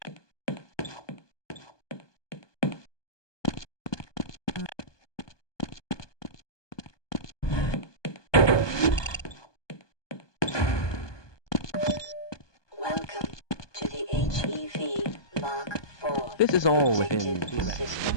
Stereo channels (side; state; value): right; late; 1.2 ms